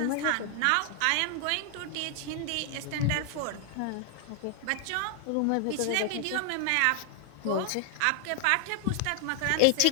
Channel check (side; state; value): both; different; correlation 0.00